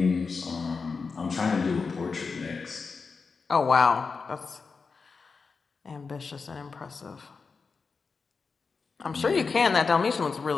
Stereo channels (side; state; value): right; quieter; 4.8 dB